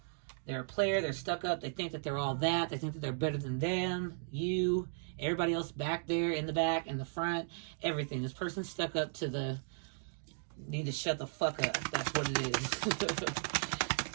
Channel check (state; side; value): silent; left; digital silence